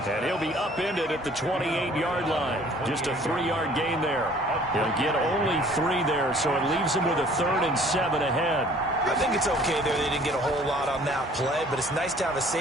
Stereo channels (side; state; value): both; normal; correlation 0.54